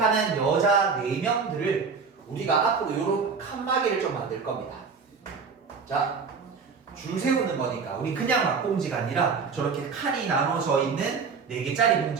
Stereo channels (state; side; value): quieter; left; 5.3 dB